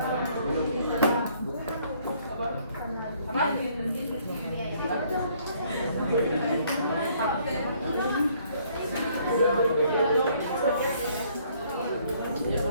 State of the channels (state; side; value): inverted; both; correlation -0.63